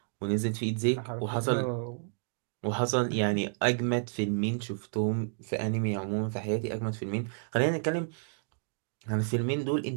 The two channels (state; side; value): silent; left; digital silence